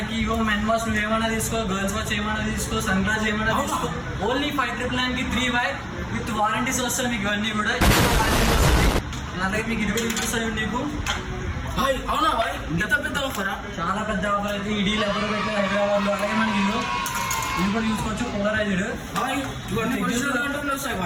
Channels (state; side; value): identical; both; correlation 1.00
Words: ఇగో men wash నువ్వు ఏమైనా తీసుకో, గర్ల్స్ వాచ్ ఏమైనా తీసుకో, సన్ గ్లాస్ ఏమైనా తీసుకో, ఓన్లీ 599 3Y విత్ వారంటీస్ వస్తాయి మీకు. ఇవన్నీ కూడా అలాగే మీకు 20 చూపిస్తాయి నీకు. అవునా భాయ్, ఇంత పెద్ద ఆఫరా? చాలా పెద్ద ఆఫర్ అయితే ఇడీ ఎవరు అయితే హైదరాబాద్లో. అలాగే మనకి ఇల్లు కూడా చూసుకోవచ్చు, పోలరైజ్డ్